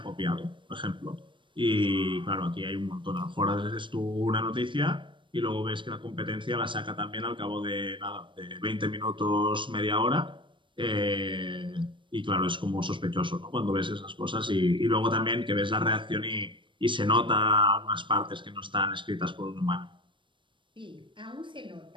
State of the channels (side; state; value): left; late; 0.24 ms